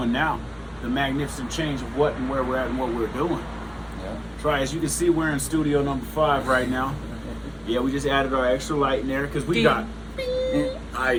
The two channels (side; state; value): both; identical; correlation 1.00